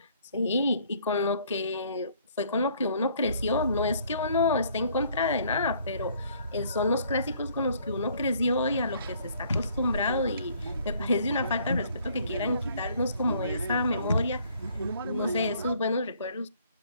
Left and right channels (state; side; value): inverted; both; correlation -0.61